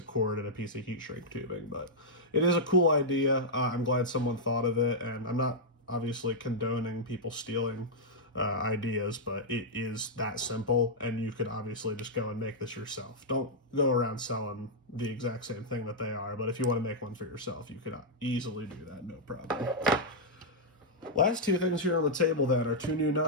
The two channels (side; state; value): both; normal; correlation -0.07